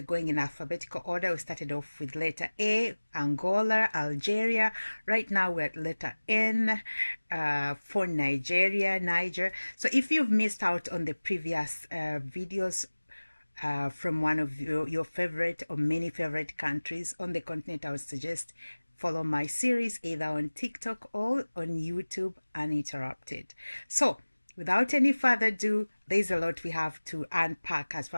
going in alphabetical order. We started off with letter A, Angola, Algeria. Right now, we're at letter N for Nigeria, Niger. So if you've missed out on the previous videos from one of your favorite or many favorite countries on the continent, I would suggest follow my series either on TikTok or on YouTube uninterrupted. So without any further ado, there's a lot we have to unpack as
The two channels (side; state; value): both; inverted; correlation -1.00